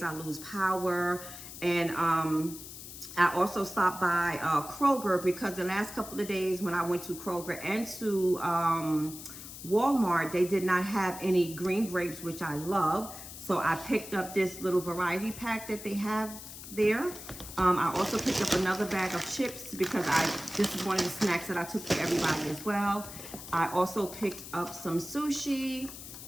I lose power. And, I also stopped by, Kroger because the last couple of days when I went to Kroger and to, Walmart, they did not have any green grapes, which I love. So I picked up this little variety pack that they have there. I also picked up another bag of chips because this is one of the snacks that I took for everybody as well. I also picked up some sushi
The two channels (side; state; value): left; noise; hiss, 12 dB below the sound